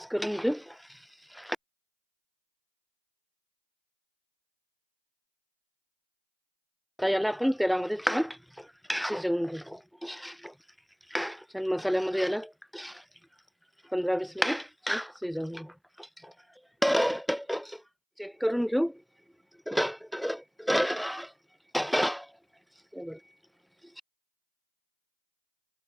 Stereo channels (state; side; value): identical; both; correlation 1.00